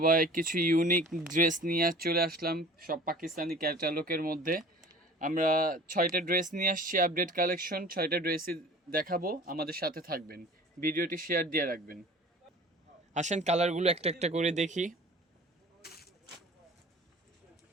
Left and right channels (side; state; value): both; normal; correlation 0.43